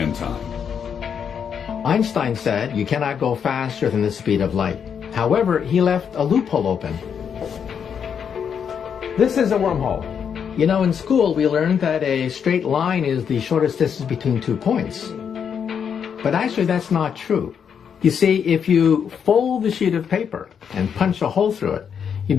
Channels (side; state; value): right; quieter; 7.4 dB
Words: time. Einstein said you cannot go faster than the speed of light. However, he left a loophole open. This is a wormhole. You know, in school we learned that a straight line is the shortest distance between 2 points. But actually that's not true. You see, if you fold the sheet of paper and punch a hole through it, you